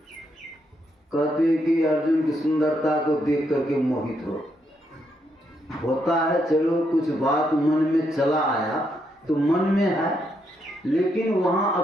कहते हैं कि अर्जुन की सुंदरता को देख करके मोहित होता है। चलो कुछ बात मन में चला आया तो मन में है, लेकिन वहाँ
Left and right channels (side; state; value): both; normal; correlation 0.78